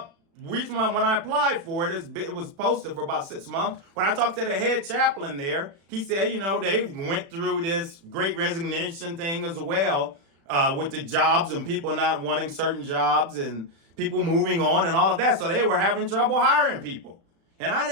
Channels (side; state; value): left; late; 36 ms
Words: recently when I applied for it. It was posted for about 6 months. When I talked to the head chaplain there, he said, they went through this great resignation thing as well with the jobs and people not wanting certain jobs and people moving on and all of that. So they were having trouble hiring people. And I